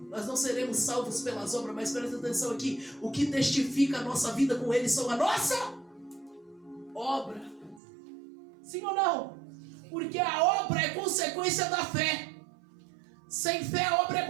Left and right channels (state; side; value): drops out; left; at 7.8 s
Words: Nós não seremos salvos pelas obras, mas presta atenção aqui. O que testifica a nossa vida com ele são a nossa obra. Sim ou não? Porque a obra é consequência da fé. Sem fé a obra é